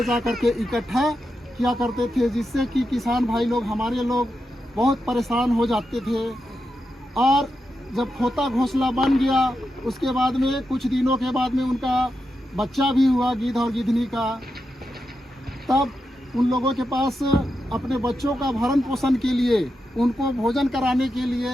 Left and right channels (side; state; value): both; normal; correlation 0.87